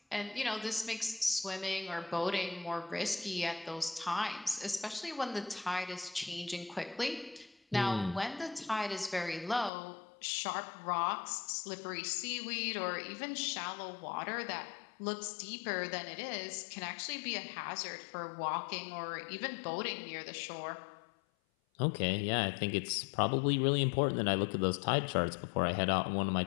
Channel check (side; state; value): right; drops out; at 9.7 s